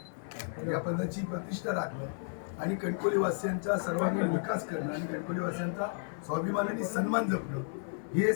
या पदाची प्रतिष्ठा राखणं आणि कणकवलीवासियांचा सर्वांगीण विकास करणं आणि कणकवलीवासियांचा स्वाभिमानाने सन्मान जपणं हे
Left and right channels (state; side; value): silent; right; 56 dB below the other